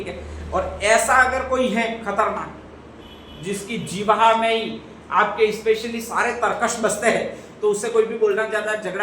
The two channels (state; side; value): identical; both; correlation 1.00